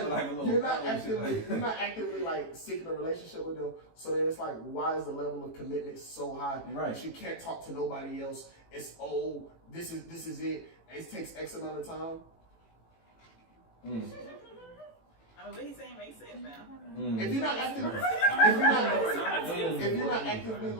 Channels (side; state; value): right; late; 18 ms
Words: then like a little you're not power and shit actively like- like seeking a relationship with them. So then it's like, why is the level of commitment so high? Right. That you can't talk to nobody else. It's this is it. It takes X amount of time. I mean, what he's saying makes sense now. If you're not actively, if you're not actively